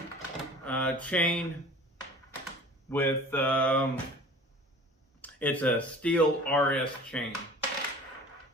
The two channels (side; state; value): both; normal; correlation 0.43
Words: chain with, it's a steel RS chain.